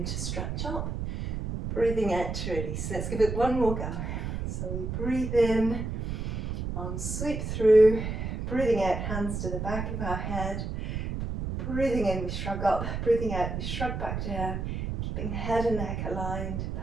to stretch up. Breathing out to release. Let's give it one more go. So we breathe in, arms sweep through. Breathing out, hands to the back of our head. Breathing in, we shrug up. Breathing out, we shrug back down. Keeping head and neck aligned,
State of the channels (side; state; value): right; noise; rumble, 4 dB below the sound